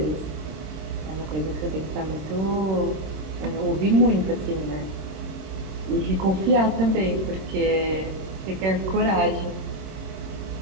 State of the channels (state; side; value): late; left; 26 ms